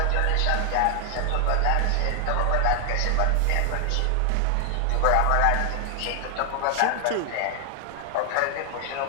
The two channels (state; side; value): different; both; correlation 0.00